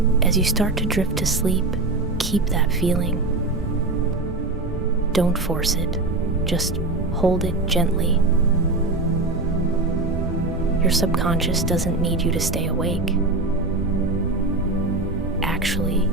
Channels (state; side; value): quieter; left; 3.1 dB